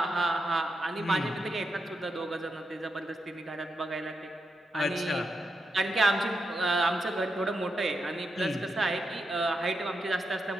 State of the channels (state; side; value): normal; both; correlation 0.85